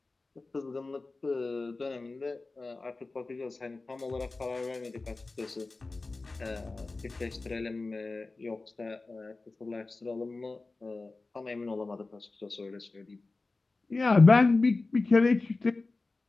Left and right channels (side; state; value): right; quieter; 3.5 dB